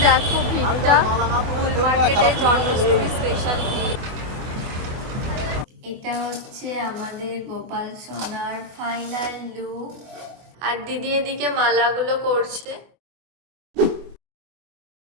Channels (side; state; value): left; late; 24 ms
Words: দেখো ভিড়টা ফুল মার্কেটে, জন্মাষ্টমী স্পেশাল ভিড়। এটা হচ্ছে আমাদের গোপাল সোনার ফাইনাল লুক। আর দিদি এদিকে মালাগুলো করছে।